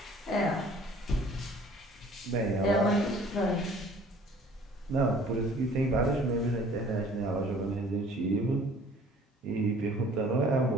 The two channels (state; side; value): normal; both; correlation 0.52